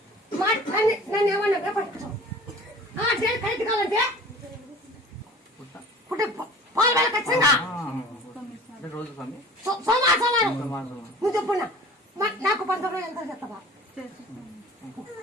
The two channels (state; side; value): normal; both; correlation 0.44